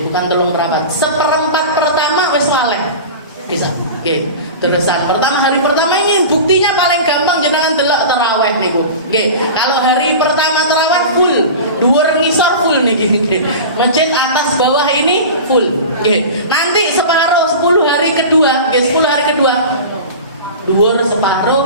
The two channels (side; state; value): both; inverted; correlation -0.32